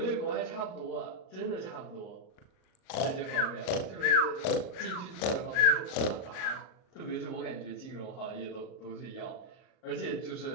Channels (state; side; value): late; right; 38 ms